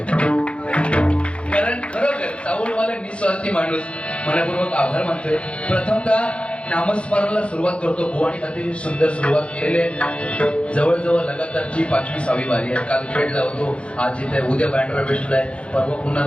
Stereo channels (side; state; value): right; late; 0.059 ms